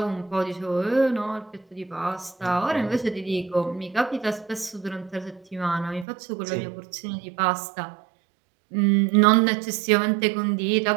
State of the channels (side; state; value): left; drops out; at 6.1 s